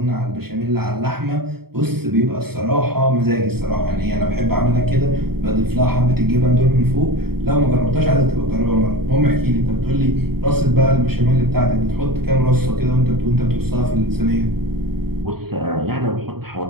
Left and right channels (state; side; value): late; left; 0.95 ms